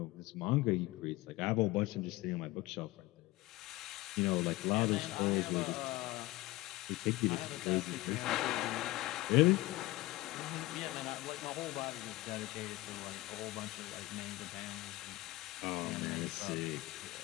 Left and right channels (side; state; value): right; quieter; 19.3 dB